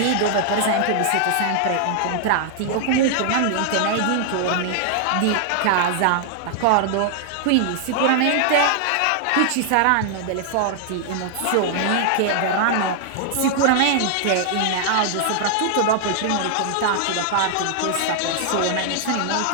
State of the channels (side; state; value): both; different; correlation 0.00